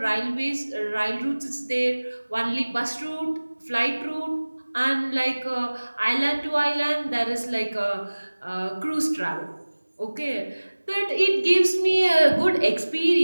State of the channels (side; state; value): both; inverted; correlation -1.00